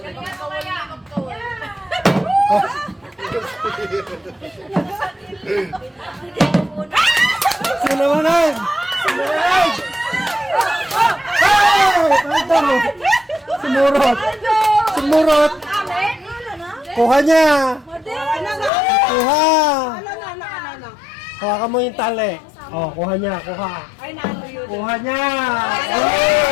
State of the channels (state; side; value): drops out; right; at 18.7 s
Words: Sinawanan! Sinawanan! Sumurot! Sumurot! Kuha niya! Kuha! Kuha ka mo yung tali. Oh, kuha niya, kuha. Kuha niya! Oh!